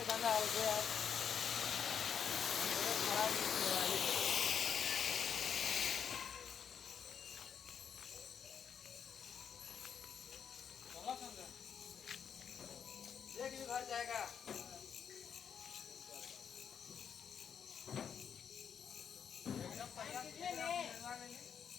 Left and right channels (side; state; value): right; quieter; 7.6 dB